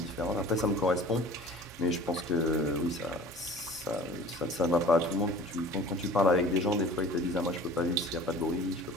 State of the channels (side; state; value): both; normal; correlation 0.43